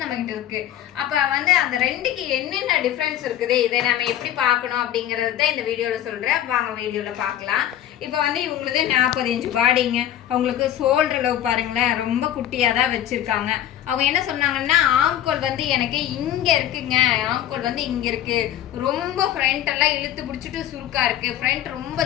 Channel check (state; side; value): quieter; right; 11.7 dB